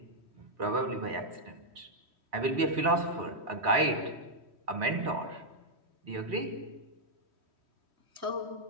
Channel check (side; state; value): left; late; 3.7 ms